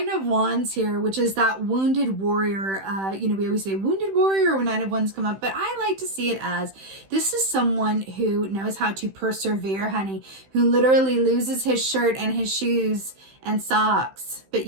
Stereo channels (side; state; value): left; late; 15 ms